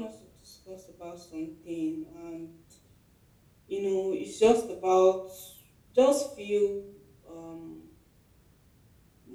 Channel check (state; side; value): identical; both; correlation 1.00